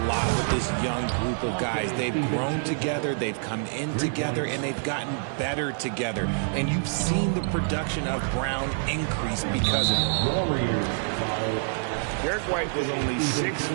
lot with this young group of guys. They've grown together, they've come in together, and they've gotten better together. And you've seen the production of Brown increase because of it. Derek White was only 6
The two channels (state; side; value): silent; left; 60 dB below the other